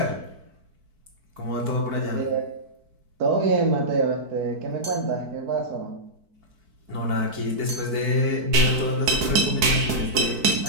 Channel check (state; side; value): late; left; 4.5 ms